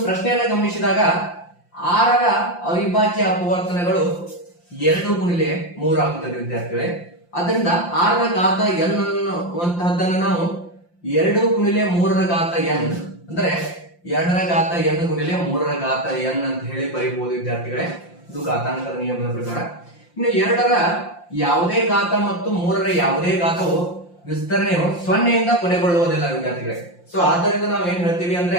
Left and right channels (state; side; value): late; right; 5.7 ms